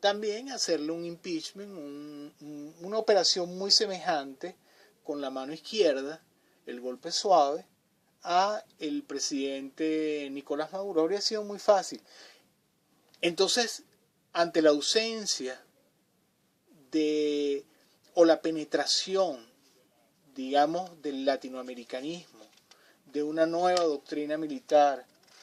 hacerle un impeachment, una operación muy semejante con la mano izquierda, el golpe suave, a el presidente Nicolás Maduro. Habría sido muy fácil. Entonces, ante la ausencia o la penetración, digamos, del latinoamericanismo, de una nueva doctrina militar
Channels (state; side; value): identical; both; correlation 1.00